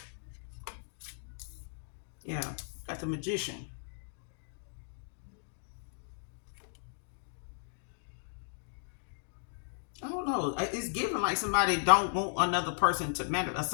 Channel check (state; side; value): silent; right; digital silence